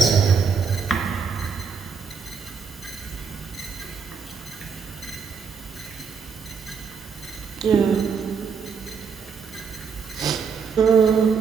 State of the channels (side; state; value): left; quieter; 6.0 dB